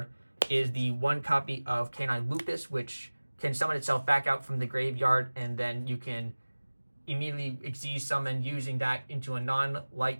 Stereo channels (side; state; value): both; inverted; correlation -1.00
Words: is the 1 copy of Canine Lupus, which can summon itself back out from the graveyard, and then you can immediately Xyz summon using that into a